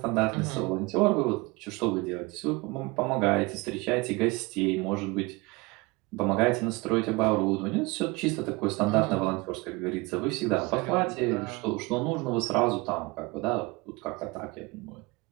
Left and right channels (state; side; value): quieter; left; 24.4 dB